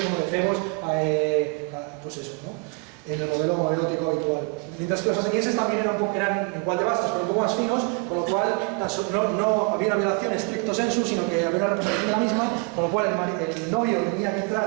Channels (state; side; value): quieter; left; 32.5 dB